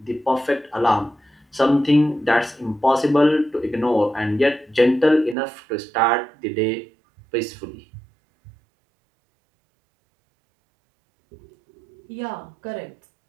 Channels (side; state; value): left; drops out; at 5.4 s